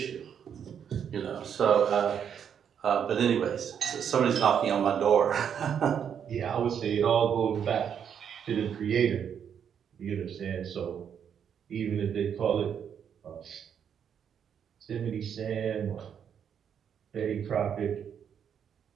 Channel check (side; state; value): left; quieter; 8.1 dB